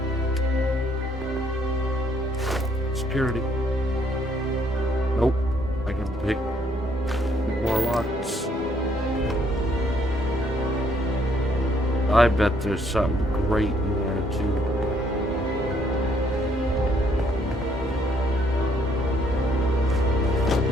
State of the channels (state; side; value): normal; both; correlation 0.68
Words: Security. Nope. I can pick more locks. I bet there's something great in there too.